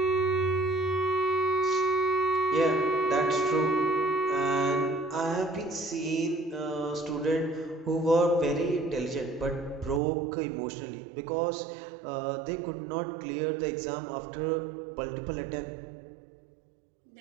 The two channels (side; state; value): left; drops out; at 10.0 s